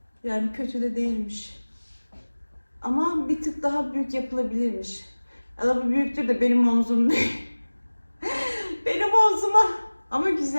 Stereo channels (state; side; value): inverted; both; correlation -1.00